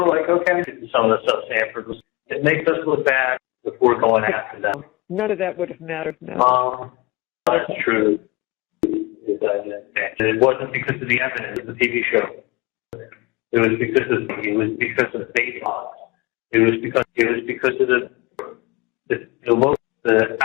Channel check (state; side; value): quieter; right; 24.3 dB